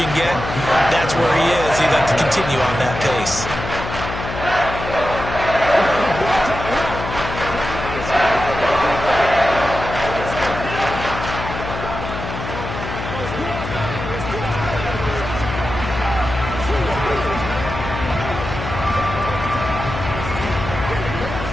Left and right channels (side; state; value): left; noise; hum, 7 dB below the sound